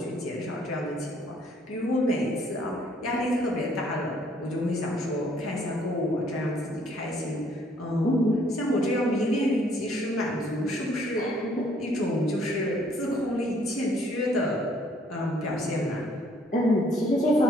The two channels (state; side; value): normal; both; correlation 0.64